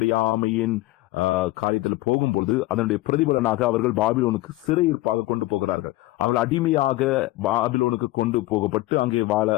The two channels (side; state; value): right; quieter; 18.6 dB